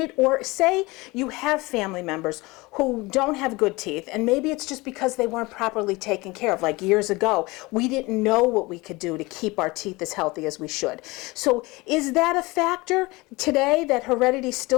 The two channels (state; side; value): quieter; right; 23.1 dB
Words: it? Or say you have family members who don't have good teeth, and maybe it's just because they weren't properly taken care of. Like years ago, we didn't know what we could do to keep our teeth as healthy as we should. So is that a factor today, that heredity